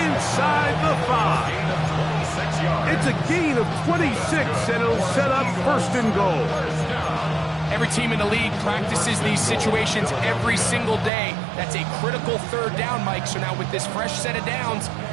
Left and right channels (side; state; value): left; drops out; at 11.1 s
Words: inside the 5. It's a gain of 26, and it'll set up first and goal. every team in the league practices these situations every single day. That's a critical third down, Mike. So now with this fresh set of downs,